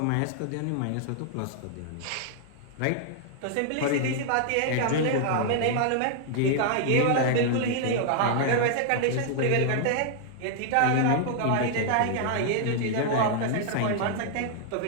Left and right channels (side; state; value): both; different; correlation 0.00